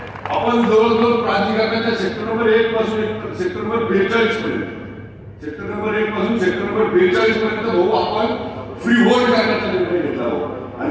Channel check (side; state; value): both; identical; correlation 1.00